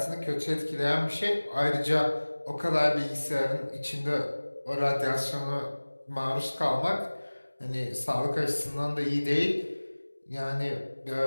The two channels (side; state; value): both; inverted; correlation -1.00